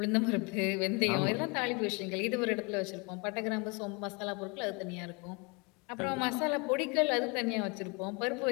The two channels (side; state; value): right; quieter; 30.4 dB